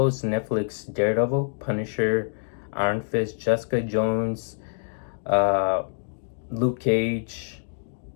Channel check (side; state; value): right; silent; digital silence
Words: Netflix Daredevil, Punisher, Iron Fist, Jessica Jones, uh, Luke Cage,